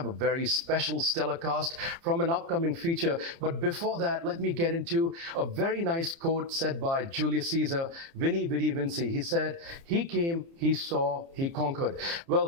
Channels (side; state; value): left; late; 30 ms